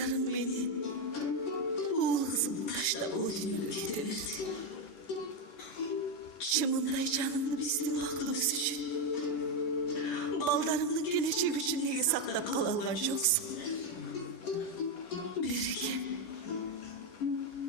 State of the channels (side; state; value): right; late; 10 ms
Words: менен уул кызымды таштап о дүйнөгө кете берди. Чымындай жанымды биздин бактыбыз үчүн, балдарымдын келечеги үчүн неге сактап кала алган жоксуң? Берекем,